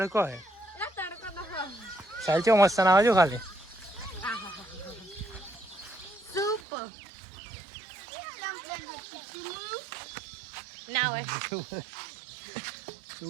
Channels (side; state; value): left; drops out; at 6.6 s